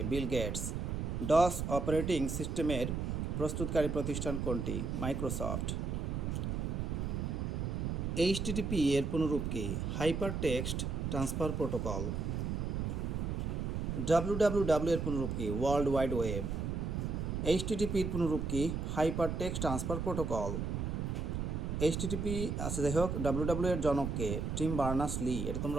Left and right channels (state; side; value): noise; right; rumble, 2 dB below the sound